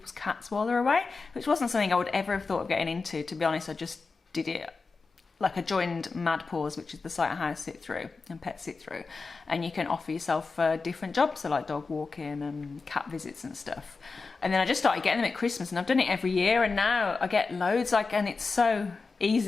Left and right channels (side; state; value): right; quieter; 4.2 dB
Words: cats while they're away, which wasn't something I would ever have thought of getting into. To be honest, I just did it. Like I joined MADPAWS, which is the site of house sit through and pet sit through, and you can offer yourself different jobs, so like dog walking and cat visits and stuff. And then I just started getting them at Christmas, and I've done it every year, and now I get loads. And it's so